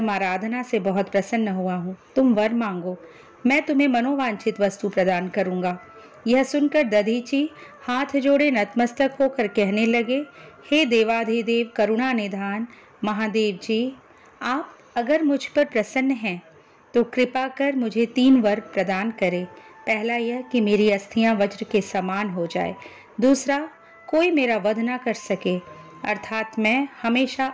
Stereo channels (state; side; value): identical; both; correlation 1.00